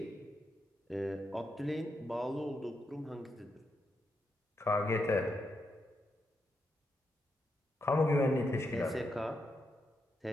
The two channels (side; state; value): both; normal; correlation 0.83